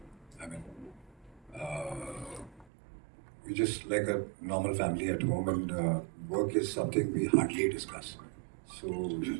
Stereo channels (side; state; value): left; drops out; at 2.7 s